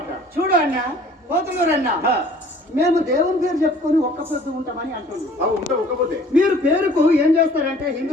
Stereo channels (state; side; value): normal; both; correlation 0.52